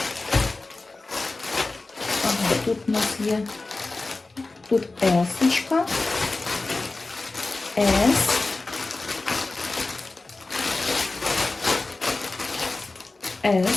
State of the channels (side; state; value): right; quieter; 3.4 dB